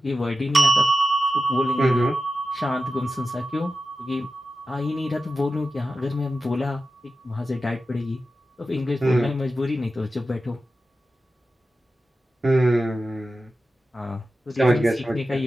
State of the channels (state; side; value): normal; both; correlation 0.92